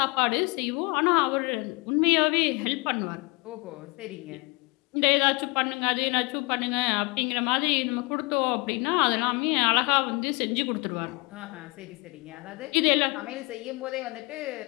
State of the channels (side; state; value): right; quieter; 27.3 dB